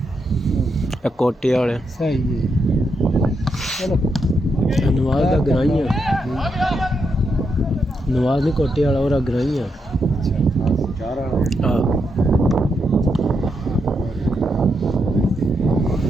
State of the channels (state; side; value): normal; both; correlation 0.82